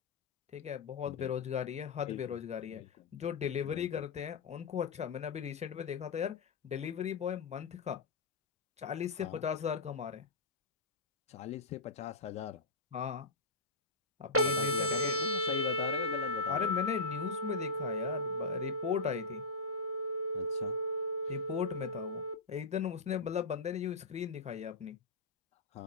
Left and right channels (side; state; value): right; quieter; 3.5 dB